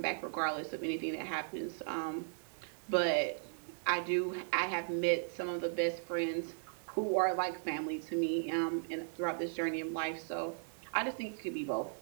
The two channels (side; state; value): left; silent; 53 dB below the other